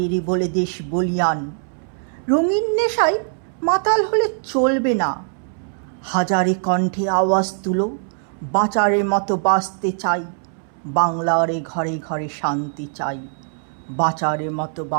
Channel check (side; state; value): left; silent; 65 dB below the other